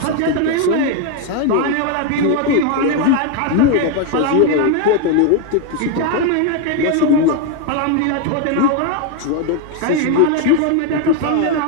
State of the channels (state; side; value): different; both; correlation 0.01